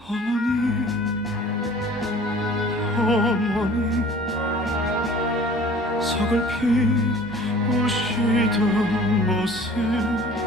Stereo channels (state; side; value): normal; both; correlation 0.48